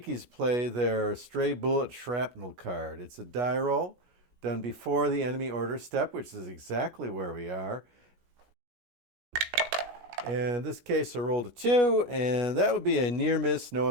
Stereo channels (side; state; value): left; late; 17 ms